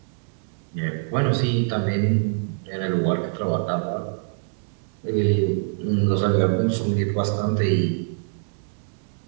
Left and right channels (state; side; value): silent; left; digital silence